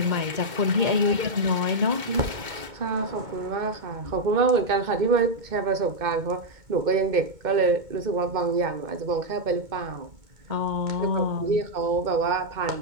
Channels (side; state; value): left; late; 2.2 ms